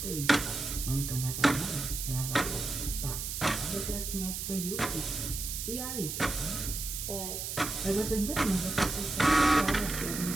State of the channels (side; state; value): right; noise; hiss, 4 dB below the sound